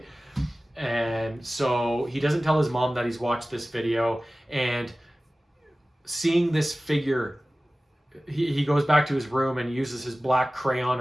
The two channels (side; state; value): both; normal; correlation 0.97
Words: And so he doesn't tell his mom that he's watched this video, and seeing this figure, he goes back to his room and uses his black crayon